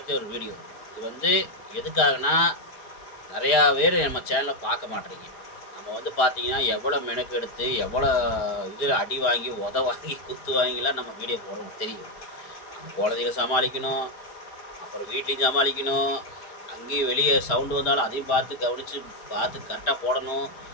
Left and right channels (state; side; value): late; right; 4.4 ms